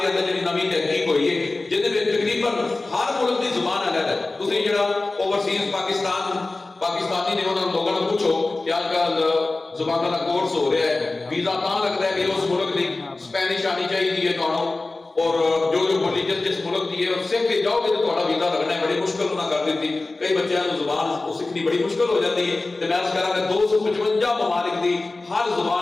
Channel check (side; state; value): right; quieter; 3.2 dB